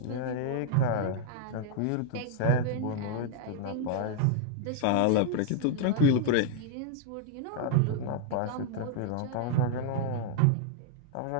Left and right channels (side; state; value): both; different; correlation 0.00